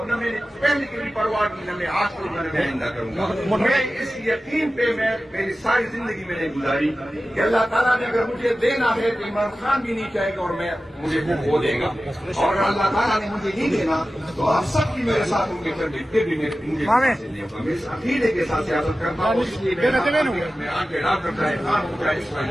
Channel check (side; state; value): both; normal; correlation 0.95